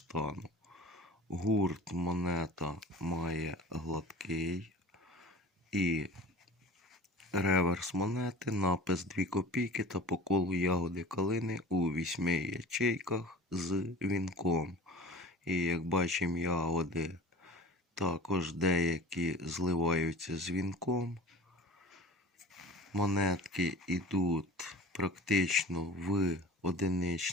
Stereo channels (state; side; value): normal; both; correlation 0.39